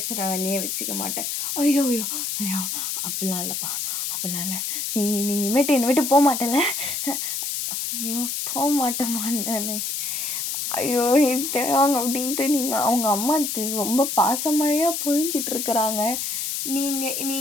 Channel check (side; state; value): left; noise; hiss, 2 dB below the sound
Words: வேலையே வச்சுக்க மாட்டேன். ஐயோ ஐயோ ஐயோ அப்படிலாம் இல்லைப்பா, அப்படிலாம் இல்லை. நீ இனிமேட்டு என்னை விட்டு போக மாட்டேல? ஐயோ போக மாட்டேம்மா நான். ஐயோ தேவாங்க அப்படின்ட்டு அவங்க அம்மா ரொம்ப பாசமழையாக பொழிஞ்சிட்ருக்குறாங்க.